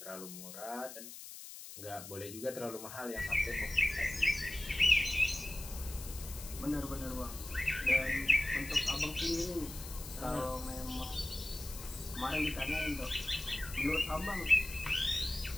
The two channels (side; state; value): left; noise; hiss, 12 dB below the sound